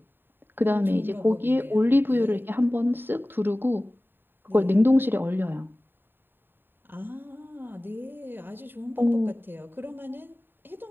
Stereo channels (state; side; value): late; left; 0.096 ms